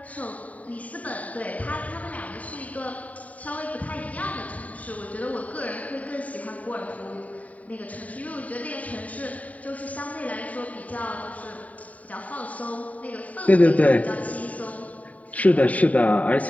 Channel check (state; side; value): late; right; 0.070 ms